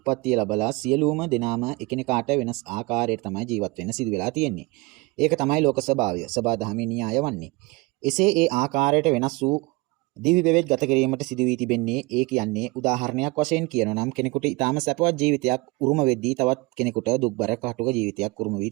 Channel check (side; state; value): left; quieter; 24.9 dB